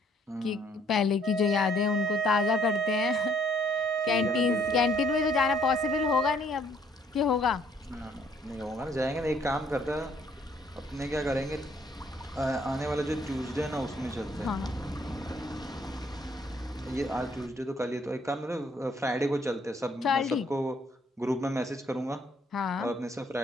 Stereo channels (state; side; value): normal; both; correlation 0.65